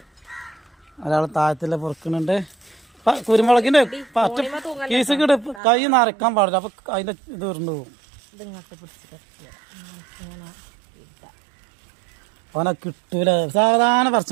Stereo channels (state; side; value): drops out; left; at 5.6 s